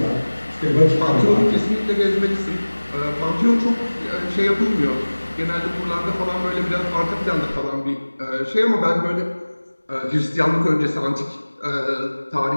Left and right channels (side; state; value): both; inverted; correlation -1.00